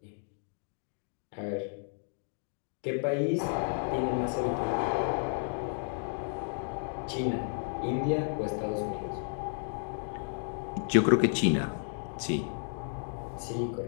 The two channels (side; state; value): right; silent; digital silence